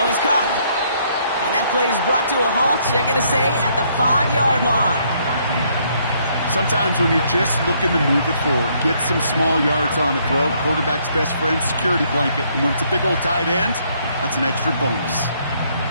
is caught. And that play is brought to a halt, you're going to say, at the 5-yard line. Sometimes when you're just looking to move it forward, get some small yards on the throw, quarterback's best friend, security blanket. And when it's a big old tight end, that's an extra bonus.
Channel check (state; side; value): inverted; both; correlation -0.69